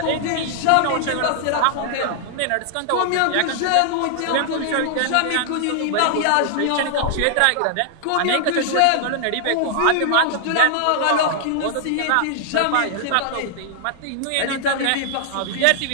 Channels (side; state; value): both; different; correlation -0.01